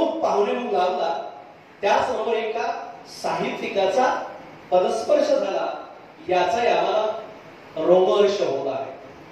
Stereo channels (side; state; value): both; identical; correlation 1.00